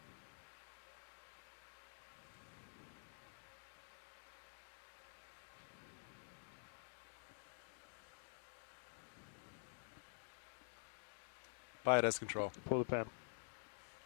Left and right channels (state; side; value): silent; right; digital silence